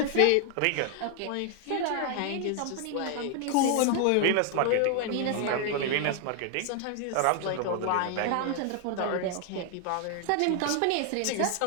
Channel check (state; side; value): different; both; correlation 0.00